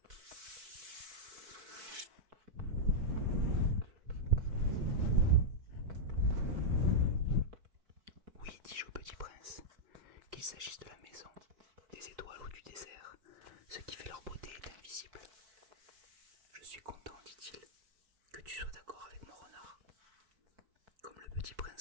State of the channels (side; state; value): left; late; 4.6 ms